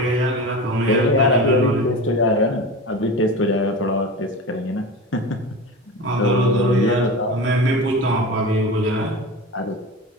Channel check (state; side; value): normal; both; correlation 0.29